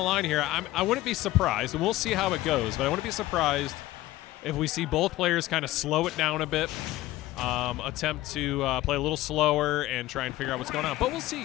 line here. I wouldn't be surprised, and we'll see how it goes, but I wouldn't be surprised if we see both players kind of slow it down a bit, attempt to play a little slower and try and figure out what's going on. But we'll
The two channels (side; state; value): right; quieter; 16.7 dB